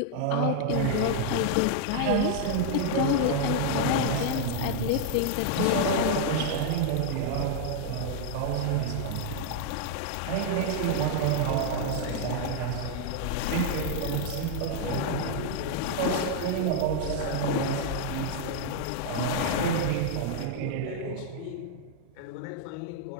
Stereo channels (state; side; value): different; both; correlation -0.01